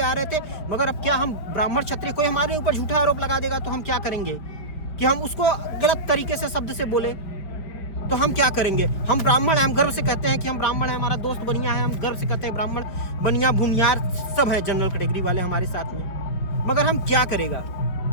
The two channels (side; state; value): right; late; 5.0 ms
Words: रहे थे। मगर अब क्या हम ब्राह्मण क्षत्रिय, कोई हमारे ऊपर झूठा आरोप लगा देगा तो हम क्या करेंगे कि हम उसको गलत तरीके से शब्द से बोले तो हम क्या करेंगे। हम ब्राह्मण हैं, हम गर्व से कहते हैं कि हम ब्राह्मण हैं, हमारा दोस्त बनिया है, हम गर्व से कहते हैं ब्राह्मण बनिया भूमियार सब हैं जनरल कैटेगरी वाले हमारे साथ में। मगर हम क्या करेगा